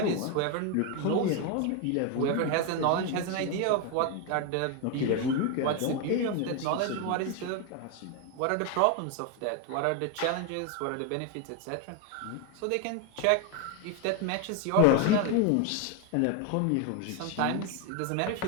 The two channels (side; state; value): both; different; correlation 0.01